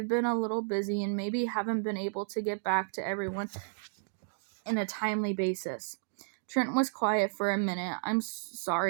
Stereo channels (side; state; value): left; silent; digital silence